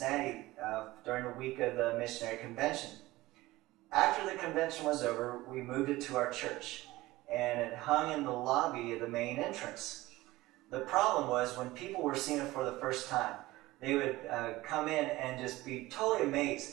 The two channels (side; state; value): left; quieter; 18.5 dB